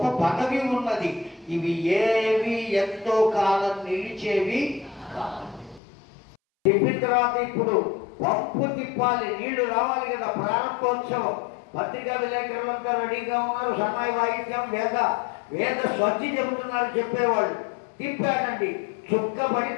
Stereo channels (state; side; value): drops out; right; at 5.8 s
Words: పదవి ఉన్నది. ఇవి ఏవి ఎంతో కాలం నిలిచేవి కాదు. తిప్పిన తర్వాత ఇప్పుడు పంపు తిప్పాలి, నీళ్లు రావాలి కదా. ప్రారంభోత్సవం, పత్రికా విలేకరులంతా రెడీగా ఉన్నారు. సన్నాయి వాయిద్యం, వేద స్వచ్ఛి చెబుతున్నారు చెప్పేవాళ్ళు. తిప్పాడండి, చుక్క